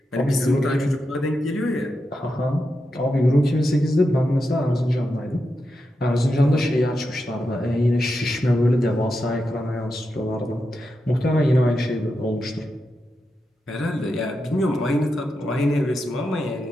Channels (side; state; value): both; normal; correlation 0.87